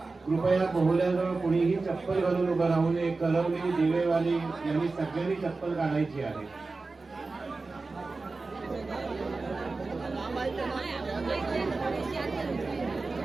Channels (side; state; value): left; quieter; 3.7 dB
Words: कृपया बोहल्याजवळ कुणीही चप्पल घालून उभं राहू नये. कलवली, दिवेवाली यांनी सगळ्यांनी चप्पल काढायची आहे.